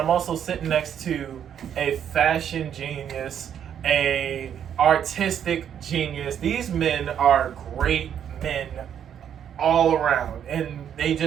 also sitting next to a fashion genius, a artistic genius. These men are great men all around, and they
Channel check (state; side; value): quieter; left; 9.1 dB